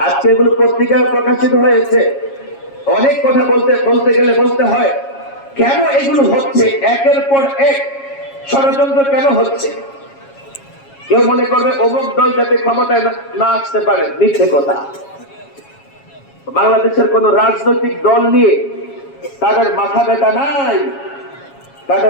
আজকে এগুলো পত্রিকায় প্রকাশিত হয়েছে। অনেক কথা বলতে গেলে বলতে হয়, কেন এগুলো হচ্ছে, একের পর এক ষড়যন্ত্র কেন হচ্ছে? কেউ মনে করবে অমুক দল যাতে ক্ষমতায় না আসতে পারে, মিথ্যে কথা। বাংলাদেশের কোন রাজনৈতিক দল নিয়ে তাদের মাথা ব্যথা নাই।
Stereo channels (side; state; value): right; late; 7.3 ms